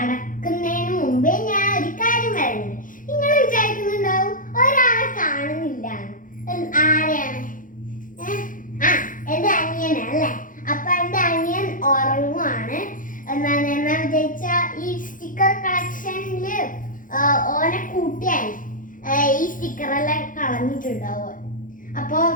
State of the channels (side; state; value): right; late; 0.39 ms